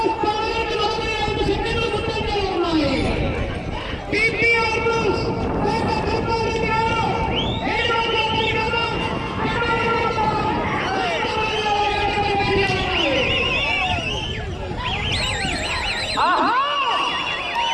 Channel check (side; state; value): both; identical; correlation 1.00